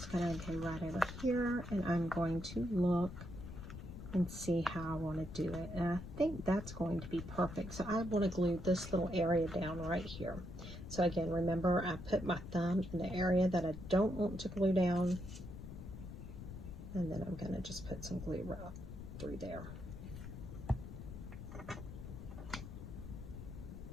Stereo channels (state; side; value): noise; left; rumble, 10 dB below the sound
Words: going to go right over here and I'm going to look and see how I want to do it. And I think that's going to be perfect. So I want to glue this little area down right here. So again, remember I put my thumb in the area that I don't want to glue down. And then I'm going to just put some glue right through there.